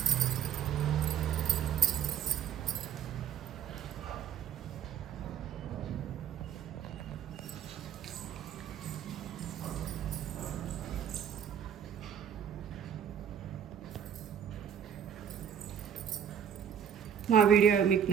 మా వీడియో మీకు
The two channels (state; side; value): quieter; left; 8.7 dB